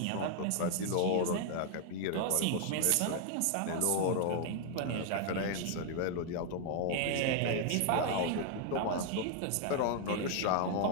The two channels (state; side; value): different; both; correlation 0.00